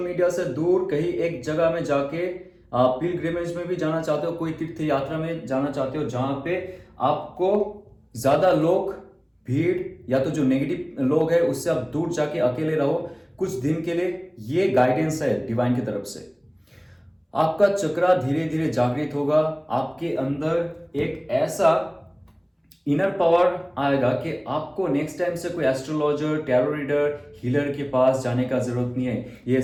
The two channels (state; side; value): identical; both; correlation 1.00